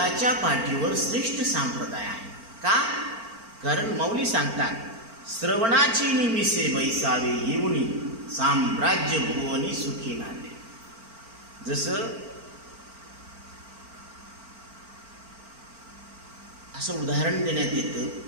पाठीवर श्रेष्ठ संप्रदाय आहे। का? कारण माऊली सांगतात, श्रवणाची निमिसे बैसावे येऊनी साम्राज्य भुवनी सुखी नांदे। जसं असं उदाहरण देण्यात येतं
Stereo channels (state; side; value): late; left; 4.4 ms